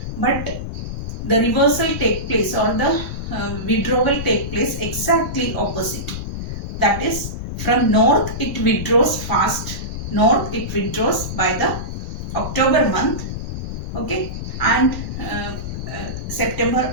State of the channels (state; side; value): noise; left; rumble, 6 dB below the sound